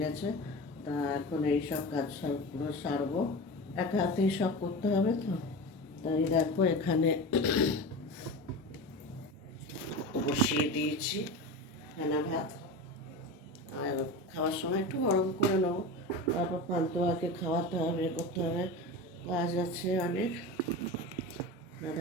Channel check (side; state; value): both; normal; correlation 0.28